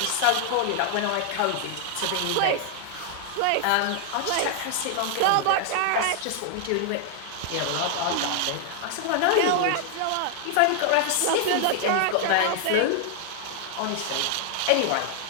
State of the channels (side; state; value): both; different; correlation 0.00